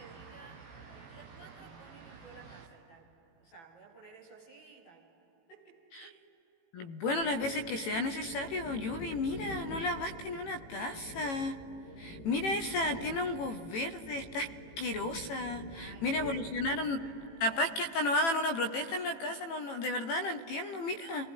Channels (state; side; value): late; right; 18 ms